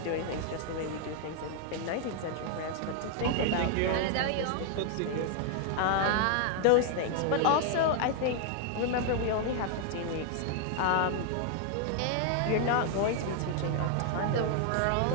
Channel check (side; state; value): both; different; correlation 0.00